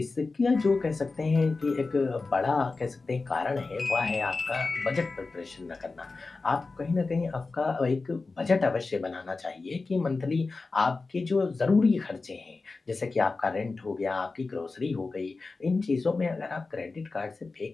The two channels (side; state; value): right; quieter; 3.8 dB